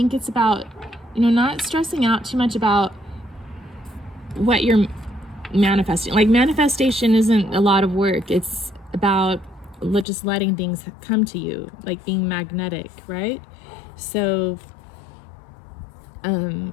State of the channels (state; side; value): drops out; right; at 10.1 s